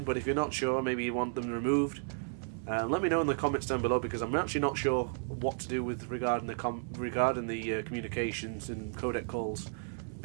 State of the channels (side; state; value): left; silent; 56 dB below the other